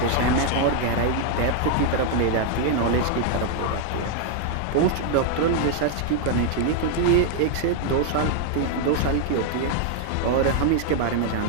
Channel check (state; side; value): different; both; correlation 0.00